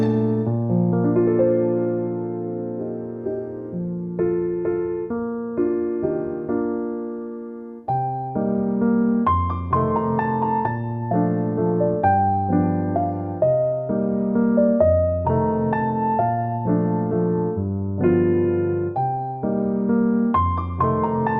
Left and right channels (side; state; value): both; identical; correlation 1.00